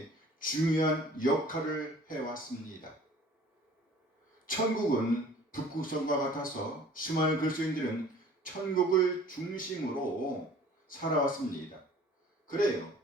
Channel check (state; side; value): normal; both; correlation 0.50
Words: 중요한 역할을 해왔습니다. 천국은 북극성과 같아서 수많은 그리스도인들은 천국을 중심으로 살아왔습니다. 그래요.